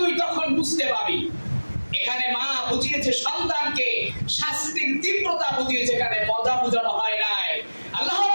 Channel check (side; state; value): both; inverted; correlation -1.00